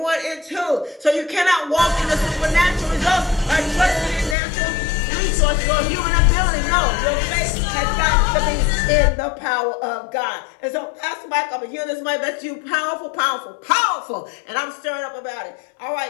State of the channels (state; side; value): drops out; right; at 4.4 s